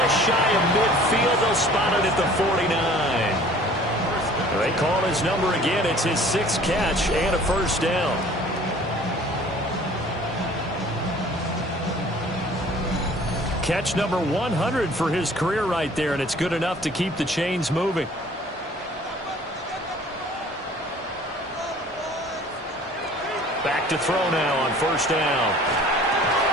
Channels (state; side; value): normal; both; correlation 0.50